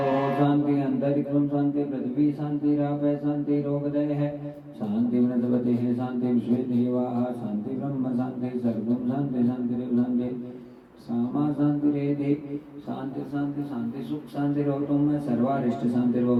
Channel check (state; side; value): identical; both; correlation 1.00